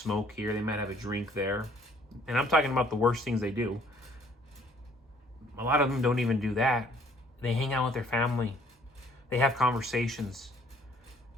here. They might have a drink there. And I'm talking about the worst things they do. A lot of them don't even do that. They hang out with their family. They have conversations.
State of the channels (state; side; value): normal; both; correlation 0.60